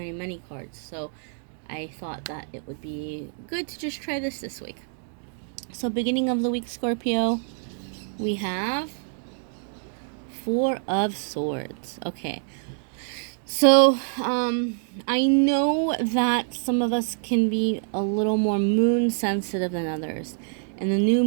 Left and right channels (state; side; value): silent; left; digital silence